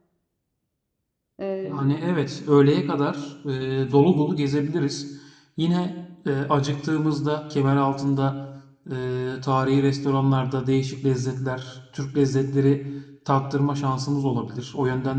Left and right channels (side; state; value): both; identical; correlation 1.00